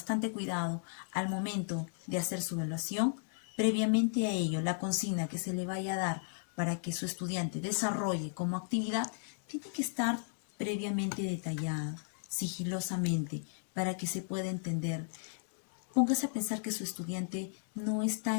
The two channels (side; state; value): right; silent; digital silence